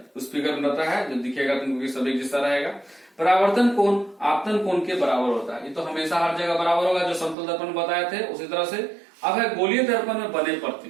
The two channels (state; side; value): drops out; left; at 7.4 s